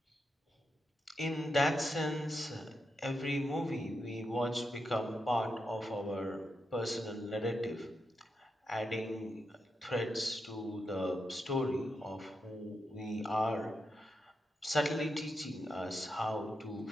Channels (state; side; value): normal; both; correlation 0.85